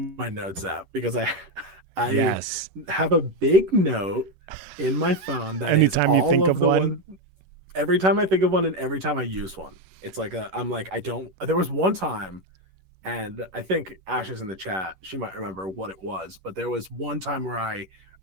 my notes app, because I Yes. have a big note in my phone that is Anytime you all think of of the one. one. Every time I think of one and every time I use one, it's like I'm like, I don't. There was one time, and I think Ash is in the chat. She might remember what it was, but there was one time where I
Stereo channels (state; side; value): late; left; 11 ms